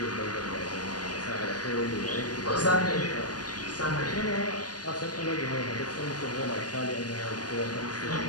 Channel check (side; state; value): right; late; 0.69 ms